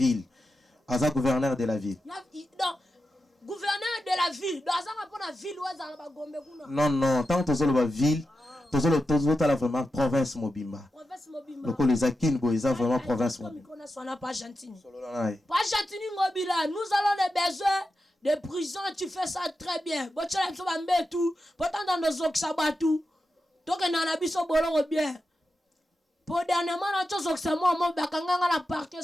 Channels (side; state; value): both; normal; correlation 0.90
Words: Azab gouverneur de la ville. Non, gouverneur de la ville. Donc Azab pour la ville ou Azab ba Gombe kuna. Non, tant que tu la ville, tu as vraiment province Mobimba. Province Mobimba. Donc les Akin Boisa vraiment province Mobimba. Pas Argentine. Pas Argentine Ngobila. Nous allons des besoins de prison, tu fais ça très bien. Bon tu l'as pas mettre tout. Pourtant dans nos oxabatu. Donc on a biso bolongo bien. Pour dernièrement na chose que moi bakanga na parquet